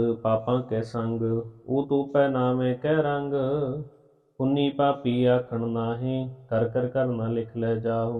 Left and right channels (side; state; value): both; identical; correlation 1.00